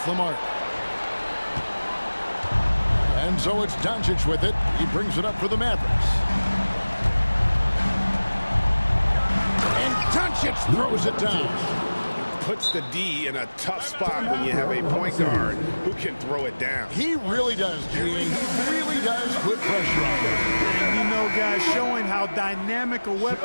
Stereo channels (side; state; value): both; inverted; correlation -1.00